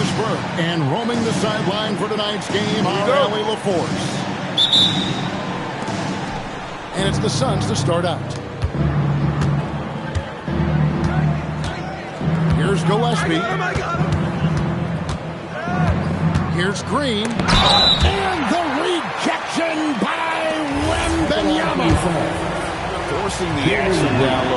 Burke. And roaming the sideline for tonight's game, our Allie LaForce. And it's the Suns to start out. Here's Gillespie. Here's Green. And the rejection by Wembanyama. Forcing the action down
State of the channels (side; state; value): both; identical; correlation 1.00